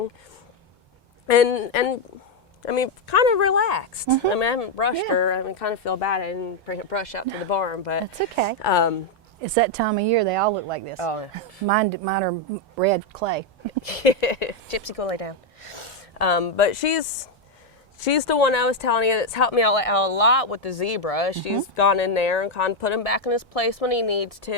and I mean, kind of relaxed. I mean, I haven't brushed her. I mean, kind of feel bad I didn't bring a brush out to the barn, but That's okay. It's that time of year. They all look like this. Oh, Mine are red clay. Gypsy, go lay down. But she's the one I was telling you that's helped me out a lot with the zebra. She's gone in there and kind of put him back in his place when he needs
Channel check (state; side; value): normal; both; correlation 0.03